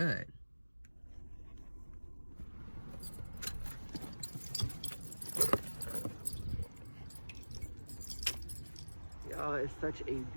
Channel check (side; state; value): both; inverted; correlation -1.00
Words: Y'all, it's such a